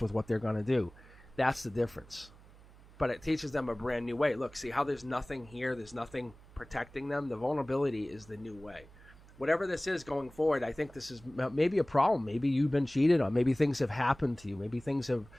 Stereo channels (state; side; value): noise; right; hum, 23 dB below the sound